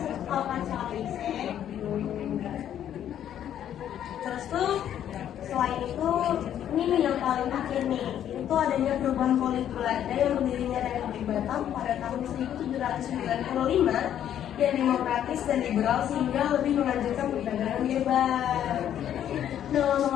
tahu kan soal EIC? Terus tuh selain itu ini Ini yang paling akhir nih, itu adanya perubahan politik Belanda yang berdirinya Republik Batam pada tahun 1795 yang demokratis dan liberal sehingga lebih menganjurkan perdagangan bebas. Nah,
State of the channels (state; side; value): quieter; right; 10.4 dB